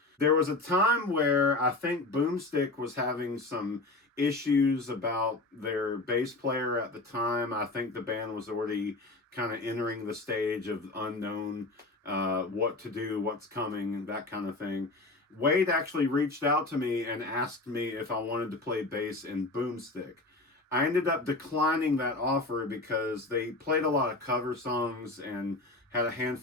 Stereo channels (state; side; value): quieter; right; 3.0 dB